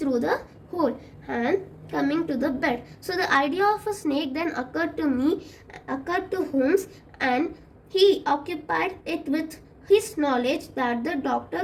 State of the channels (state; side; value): identical; both; correlation 1.00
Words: the hole and coming to the bed. So the idea of a snake then occurred to Holmes, and he occupied it with his knowledge that the doctor